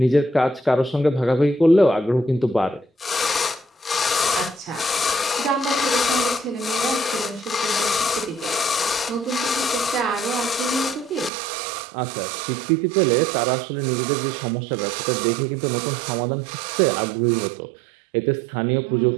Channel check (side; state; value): left; drops out; at 11.3 s